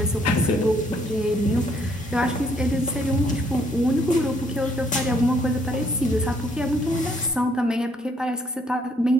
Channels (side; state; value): both; normal; correlation 0.67